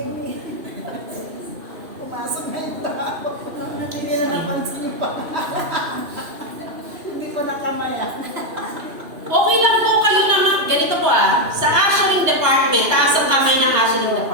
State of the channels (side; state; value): left; late; 2.8 ms